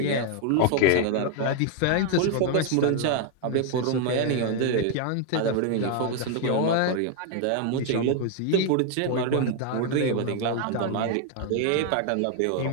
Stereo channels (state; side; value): different; both; correlation 0.00